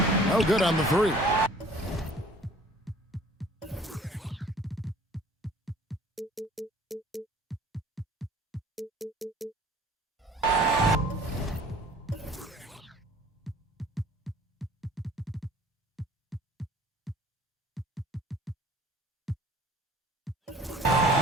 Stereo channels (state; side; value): normal; both; correlation 0.52